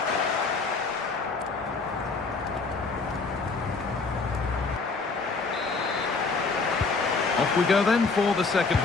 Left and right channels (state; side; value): quieter; right; 4.3 dB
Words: Off we go then for the second